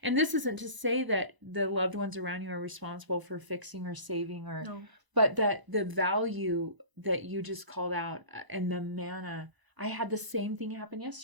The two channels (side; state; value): left; late; 1.0 ms